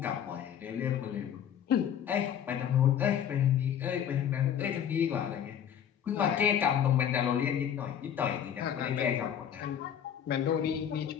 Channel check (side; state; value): right; quieter; 9.2 dB